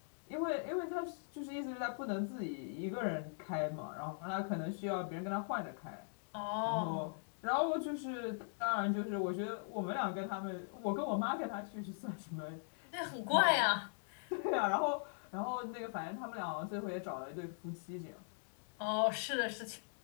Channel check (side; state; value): right; silent; digital silence